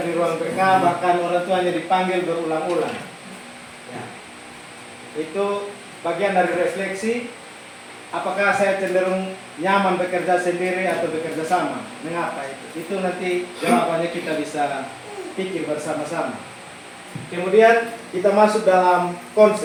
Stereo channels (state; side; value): identical; both; correlation 1.00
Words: di ruang BK, bahkan orang tuanya dipanggil berulang-ulang. Ya. Itu bagian dari refleksi, apakah saya cenderung nyaman bekerja sendiri atau bekerja sama? Mengapa itu? Itu nanti jawabannya kita bisa pikir bersama-sama. Kemudian kita masuk dalam